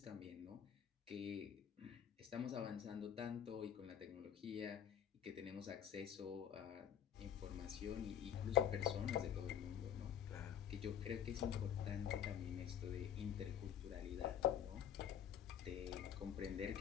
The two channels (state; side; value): quieter; right; 9.3 dB